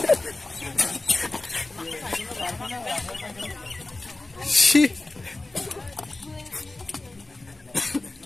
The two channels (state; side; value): quieter; right; 3.0 dB